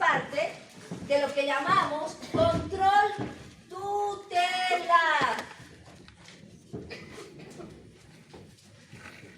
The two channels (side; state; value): both; identical; correlation 1.00